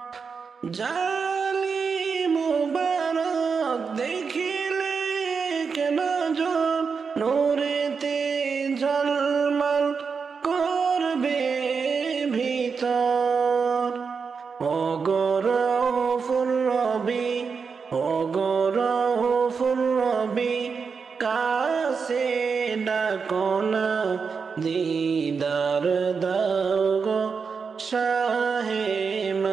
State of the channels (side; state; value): left; quieter; 5.5 dB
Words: জালি মুবারক দেখিলে এক নজর নূরেতে ঝলমল করবে ভিতর ও গো রউফুর রবি ও গো রউফুর রবি কাছে ডাকো না দিদার দাও গো শাহে